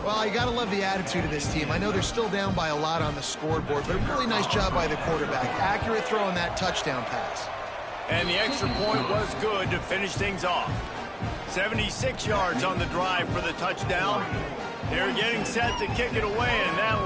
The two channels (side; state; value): both; identical; correlation 1.00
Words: you got to love the attitude of this team. I know they're still down by a lot on the scoreboard, but a really nice job by the quarterback. Accurate throw on that touchdown pass. And the extra point was good to finish things off. 76 yards on the drive for the touchdown. They're getting set to kick it away, and